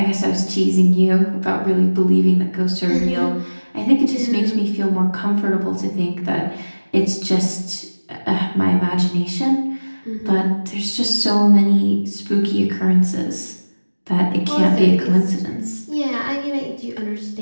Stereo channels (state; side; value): inverted; both; correlation -1.00